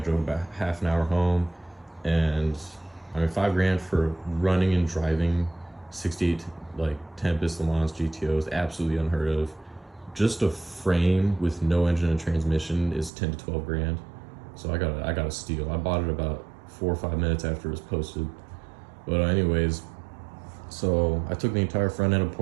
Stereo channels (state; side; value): drops out; left; at 13.1 s